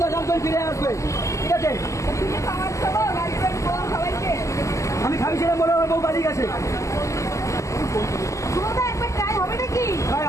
তার গার্লফ্রেন্ড ফিরে আসবে ঠিক আছে আমি খাইছিলাম বলে আমার বউ পালিয়ে গেছে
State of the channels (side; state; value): right; late; 0.15 ms